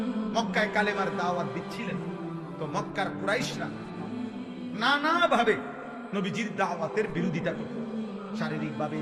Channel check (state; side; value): identical; both; correlation 1.00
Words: মক্কায় কালেমার দাওয়াত দিচ্ছিলেন, তো মক্কার কুরাইশরা নানাভাবে নবীজির দাওয়াতের বিরোধিতা করত। শারীরিকভাবে,